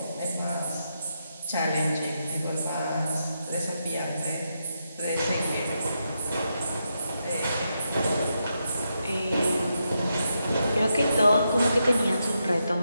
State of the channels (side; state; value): both; inverted; correlation -0.84